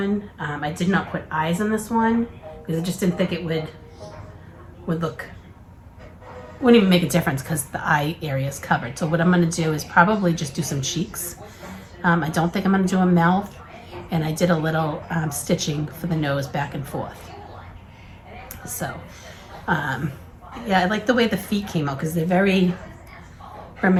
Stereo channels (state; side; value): identical; both; correlation 1.00